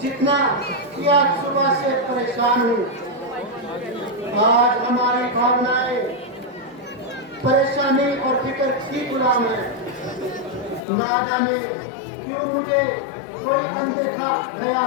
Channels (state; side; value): drops out; right; at 10.8 s